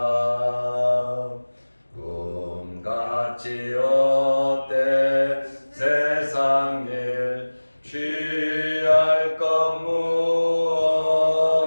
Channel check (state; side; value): inverted; both; correlation -1.00